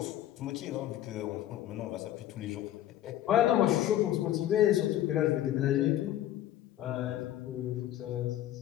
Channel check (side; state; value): right; quieter; 12.7 dB